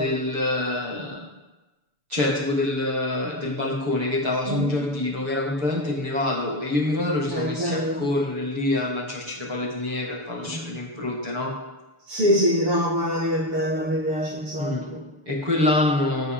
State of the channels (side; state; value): left; late; 6.8 ms